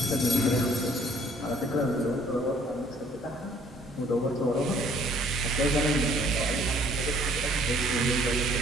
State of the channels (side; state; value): both; normal; correlation 0.59